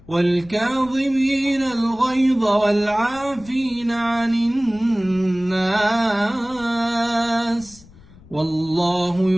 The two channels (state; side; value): noise; left; rumble, 23 dB below the sound